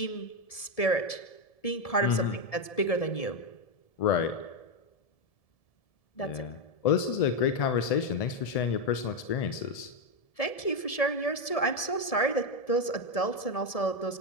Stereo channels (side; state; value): right; late; 1.7 ms